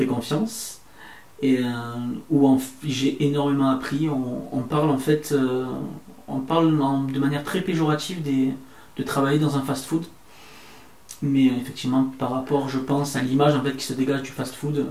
confiance. Et où j'ai énormément appris. On parle en fait, de manière très péjorative de travailler dans un fast-food. Mais effectivement, par rapport, je pense, à l'image en fait qui se dégage du fast-food,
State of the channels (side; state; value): both; identical; correlation 1.00